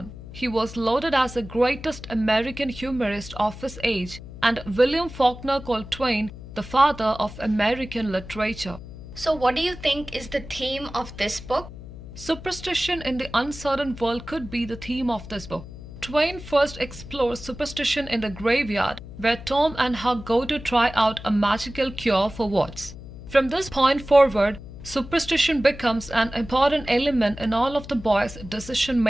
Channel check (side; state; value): left; noise; hum, 14 dB below the sound